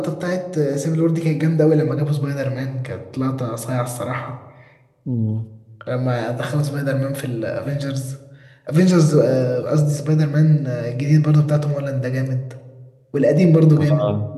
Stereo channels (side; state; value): both; identical; correlation 1.00